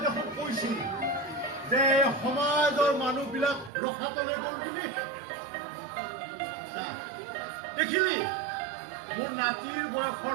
দেখোন কৈছিলি যে সমাজৰ মানুহবিলাক ৰখাতলে গ'ল বুলি দেখিলি মোৰ নাতিৰ বয়সৰ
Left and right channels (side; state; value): left; drops out; at 3.7 s